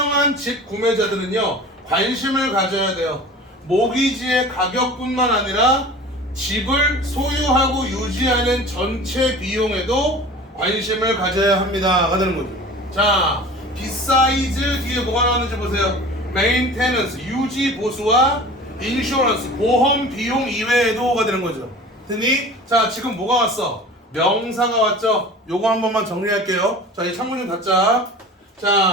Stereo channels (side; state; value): both; normal; correlation 0.40